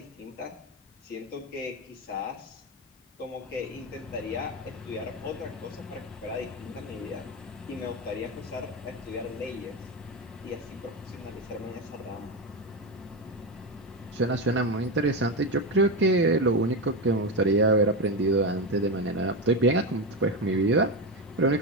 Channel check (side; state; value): both; normal; correlation 0.14